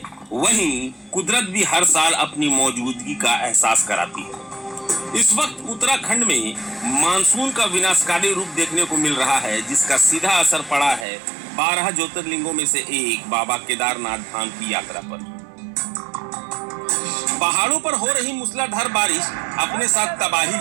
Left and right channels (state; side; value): drops out; left; at 11.1 s